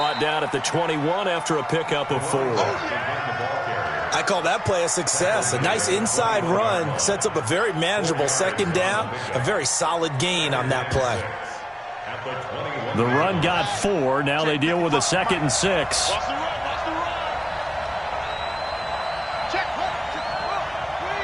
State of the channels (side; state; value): both; identical; correlation 1.00